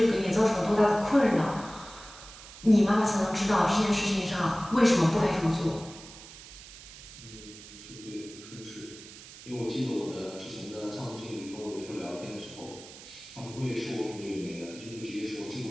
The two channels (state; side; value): noise; right; hiss, 17 dB below the sound